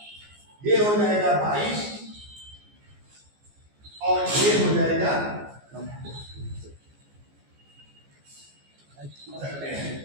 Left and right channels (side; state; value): left; late; 14 ms